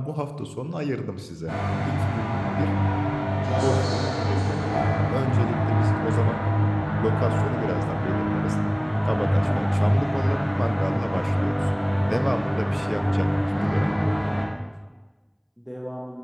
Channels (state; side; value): identical; both; correlation 1.00